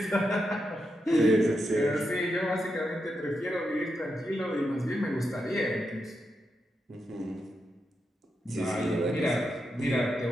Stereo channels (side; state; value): both; normal; correlation 0.85